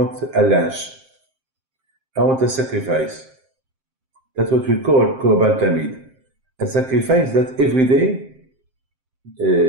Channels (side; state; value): left; late; 7.6 ms